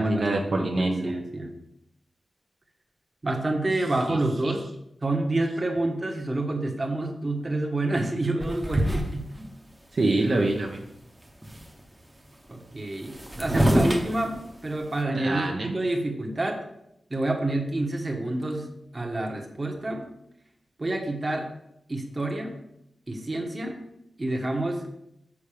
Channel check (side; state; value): both; normal; correlation 0.93